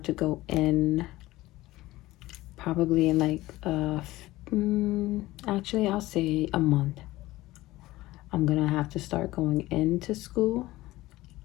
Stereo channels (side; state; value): right; quieter; 17.7 dB